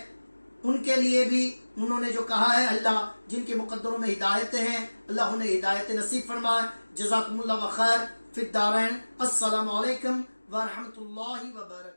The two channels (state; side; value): inverted; both; correlation -1.00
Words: ان کے لیے بھی انہوں نے جو کہا ہے، اللہ جن کے مقدروں میں ہدایتیں ہیں اللہ انہیں ہدایت نصیب فرمائے۔ جزاکم اللہ خیر فی الدارین۔ السلام علیکم ورحمۃ اللہ